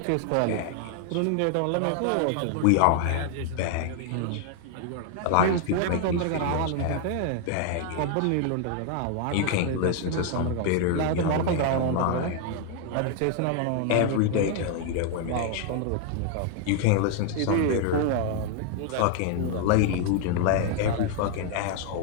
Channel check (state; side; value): different; both; correlation 0.00